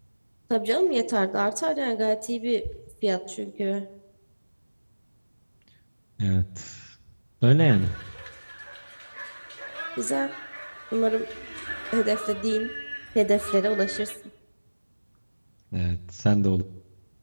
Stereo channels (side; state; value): both; inverted; correlation -1.00